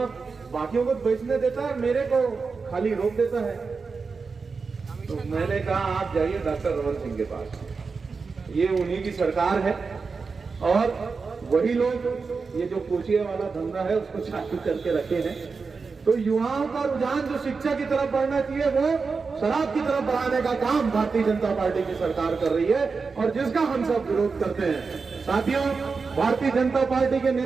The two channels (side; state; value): left; quieter; 4.7 dB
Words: बाकियों को बेचने देता है, मेरे को खाली रोक देता है। तो मैंने कहा आप जाइए डॉक्टर रमन सिंह के पास, ये उन्हीं की सरकार है और वही लोग ये जो कोचिया वाला धंधा है उसको चालू करके रखे हैं। तो युवाओं का रुझान जो शिक्षा की तरफ बढ़ना चाहिए वो शराब की तरफ बढ़ाने का काम भारतीय जनता पार्टी की सरकार कर रही है, और जिसका हम सब विरोध करते हैं। साथियों, भारतीय जनता पार्टी के